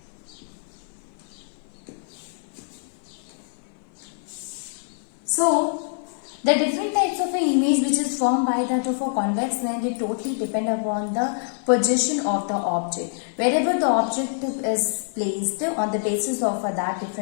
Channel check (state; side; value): silent; right; 55 dB below the other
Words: So, the different types of an image which is formed by that of a convex lens, it totally depend upon the position of the object. Wherever the object is placed, on the basis of that,